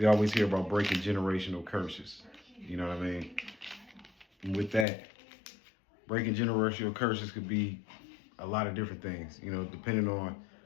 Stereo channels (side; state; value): right; drops out; at 4.9 s